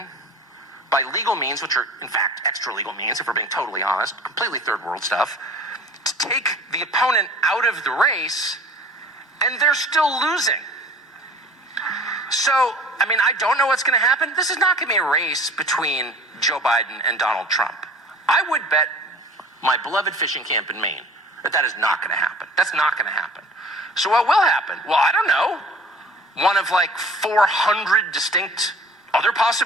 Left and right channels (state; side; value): normal; both; correlation 0.46